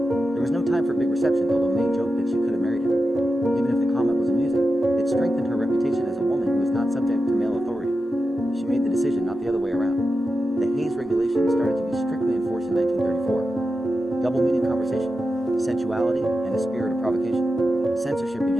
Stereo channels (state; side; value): normal; both; correlation 0.90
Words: was no time for big reception, although Mae joked that she could have married him. Even if the comment was amusing, it strengthened her reputation as a woman who was not subject to male authority. She made the decision, not the other way around. The Hays Regulation started to be strictly enforced in 1934. Double-meaning conversation, sensuality, and a spirit of provocation. Censorship